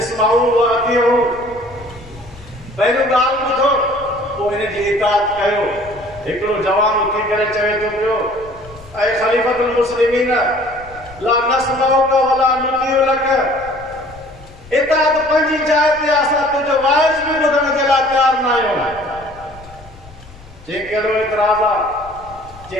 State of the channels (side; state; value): left; noise; rumble, 21 dB below the sound